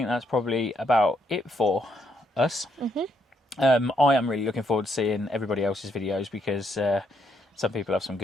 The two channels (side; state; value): both; normal; correlation 0.75